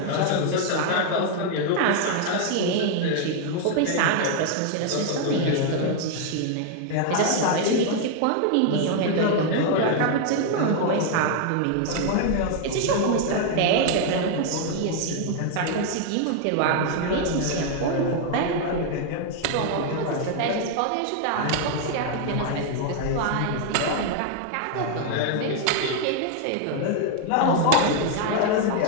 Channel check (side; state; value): both; different; correlation 0.00